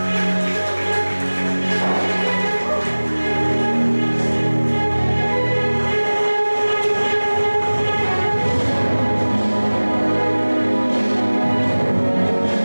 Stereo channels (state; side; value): inverted; both; correlation -1.00